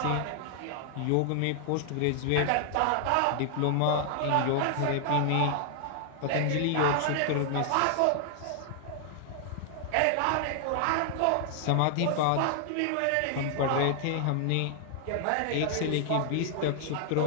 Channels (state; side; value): different; both; correlation 0.00